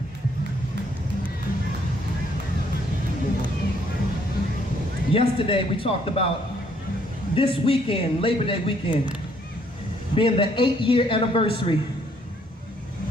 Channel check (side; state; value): both; normal; correlation 0.67